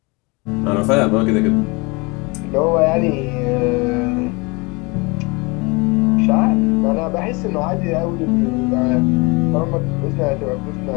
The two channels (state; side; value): quieter; right; 27.5 dB